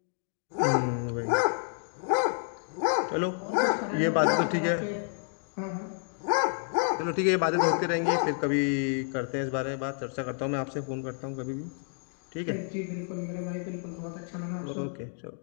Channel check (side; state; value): right; silent; 56 dB below the other